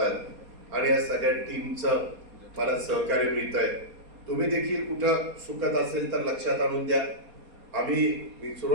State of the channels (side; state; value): left; late; 4.2 ms